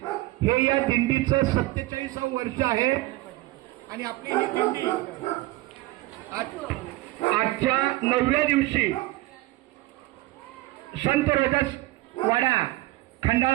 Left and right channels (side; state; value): left; quieter; 19.1 dB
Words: हे या दिंडीचं 47वं वर्ष आहे आणि आपली ही दिंडी आजच्या 9व्या दिवशी संत रोहिदास वाडा